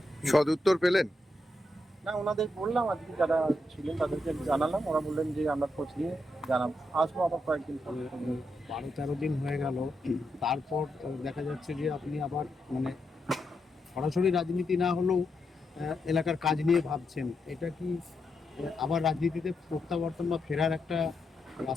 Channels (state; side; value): normal; both; correlation 0.83